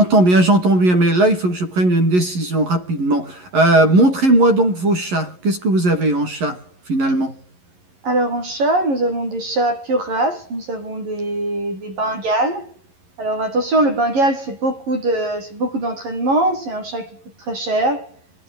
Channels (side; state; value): left; late; 11 ms